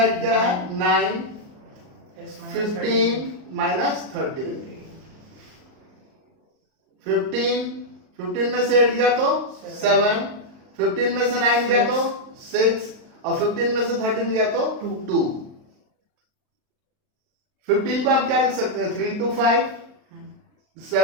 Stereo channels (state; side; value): late; left; 38 ms